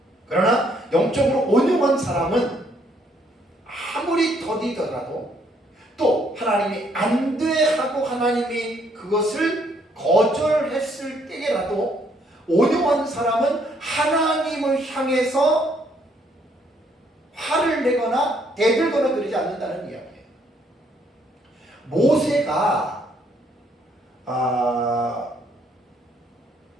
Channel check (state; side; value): normal; both; correlation 0.68